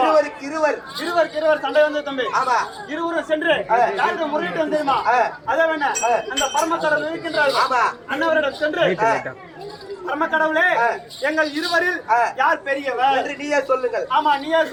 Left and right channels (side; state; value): both; identical; correlation 1.00